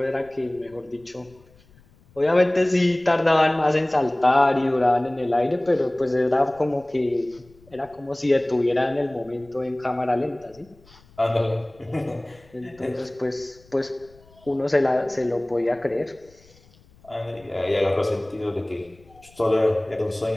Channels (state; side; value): noise; left; rumble, 28 dB below the sound